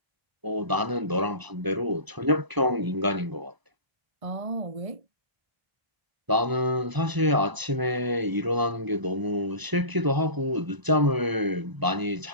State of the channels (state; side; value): late; left; 1.0 ms